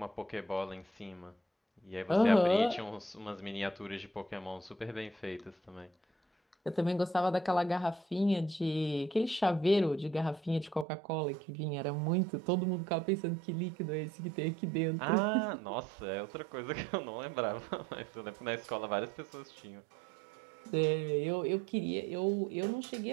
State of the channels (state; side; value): drops out; left; at 10.9 s